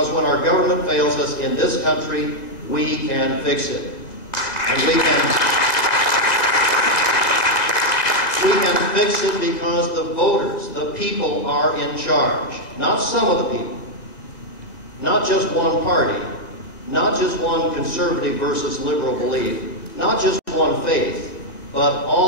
when our government fails us in this country, we can fix it. And we can fix it because the voters, the people, are in charge. Not some of the people. Not just one party. Not just one conservative versus liberal belief. Not just one faith, but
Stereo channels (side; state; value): right; late; 1.8 ms